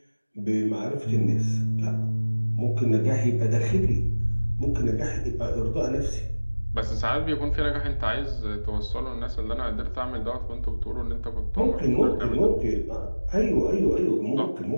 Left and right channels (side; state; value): both; inverted; correlation -1.00